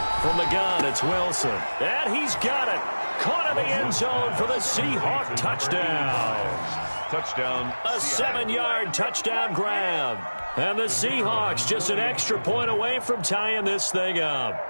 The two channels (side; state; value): both; inverted; correlation -1.00